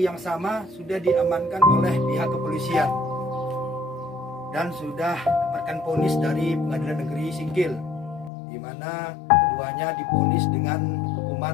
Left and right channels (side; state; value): right; drops out; at 8.3 s